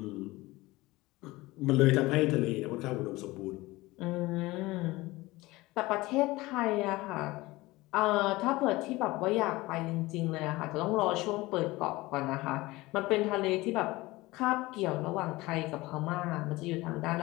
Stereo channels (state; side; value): quieter; right; 20.2 dB